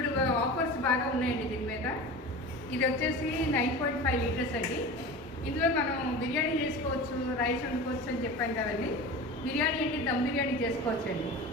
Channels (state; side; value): normal; both; correlation 0.32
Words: ఆఫర్స్ బాగా ఉన్నాయండి దీని మీద. ఇది వచ్చేసి 9.5 లీటర్స్ అండి. ఇందులో మనం బిర్యానీ చేసుకోవచ్చు, రైస్ వండుకోవచ్చు అని చెప్పాను కదండి. బిర్యానీ అంటే దమ్ బిర్యానీ చేసుకోవచ్చు అండి.